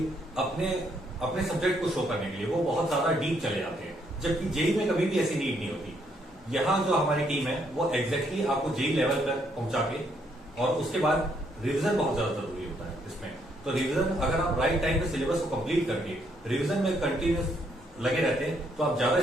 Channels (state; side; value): normal; both; correlation 0.72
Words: अपने सब्जेक्ट को शो करने के लिए वो बहुत ज्यादा डीप चले जाते हैं, जबकि जेई में कभी भी ऐसी नीड नहीं होती। यहाँ जो हमारी टीम है वो एग्जैक्टली आपको जेई लेवल पर पहुंचा के, और उसके बाद रिवीजन बहुत ज्यादा जरूरी होता है इसमें। तो रिवीजन अगर आप राइट टाइम पे सिलेबस को कंप्लीट करके रिवीजन में कंटिन्यूस लगे रहते हैं तो आप ज्यादा